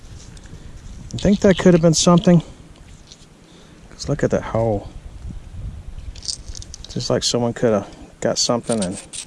I think that could have been something. Because look at that hole. Just like someone could have got something and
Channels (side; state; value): both; identical; correlation 1.00